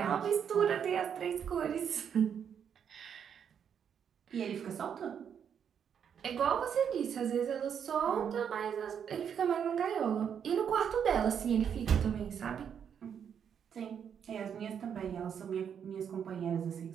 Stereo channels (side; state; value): left; quieter; 8.0 dB